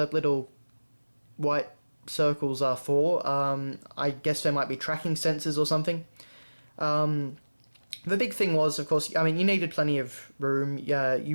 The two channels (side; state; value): both; inverted; correlation -1.00